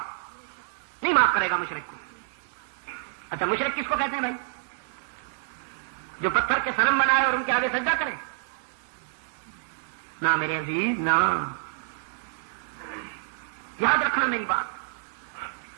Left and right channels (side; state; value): left; silent; digital silence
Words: نہیں معاف کرے گا مشرک کو. اچھا مشرک کس کو کہتے ہیں بھائی؟ جو پتھر کے صنم بنائے اور ان کے آگے سجدہ کرے؟ نہ میرے عزیز، نہ. یاد رکھنا میری بات،